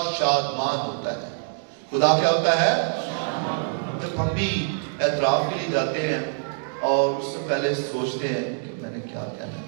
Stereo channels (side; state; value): left; silent; digital silence